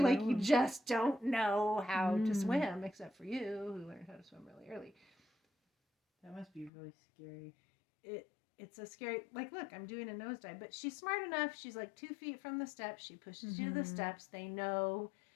like, you just don't know how to swim, except for you, who learned how to swim really early. That must be really scary. It's a scary, like, look, I'm doing a nosedive, but she's smart enough. She's like 2 feet from the steps. She pushes you to the steps. They know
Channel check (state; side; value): drops out; right; at 6.7 s